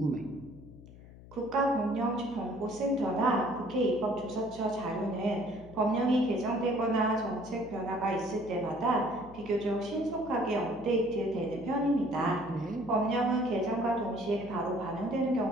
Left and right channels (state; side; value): noise; left; hum, 19 dB below the sound